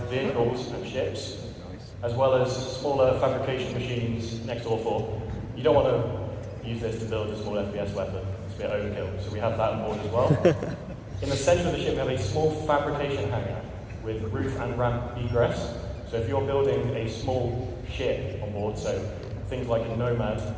vehicles and ships, as well as smaller fabrication machines next door for. You don't want to use this to build a small FPS weapon. It's a bit overkill, so we have that on board as well. In the centre of the ship, we have a small fabrication hangar with roof and ramp egress. So if you're building a small ship on board, so things like a Nomad,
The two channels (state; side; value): identical; both; correlation 1.00